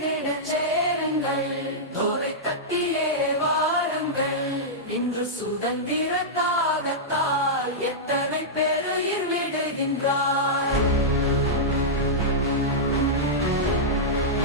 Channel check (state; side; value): normal; both; correlation -0.10